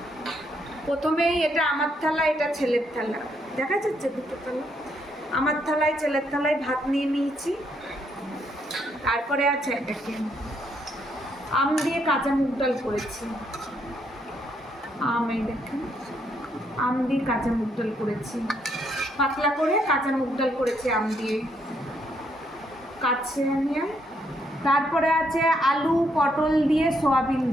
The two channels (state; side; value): normal; both; correlation 0.74